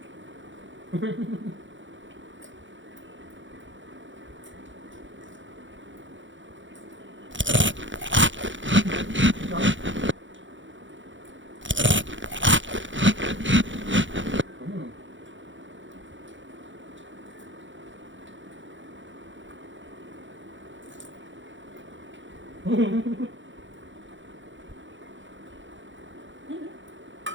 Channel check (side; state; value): left; late; 0.55 ms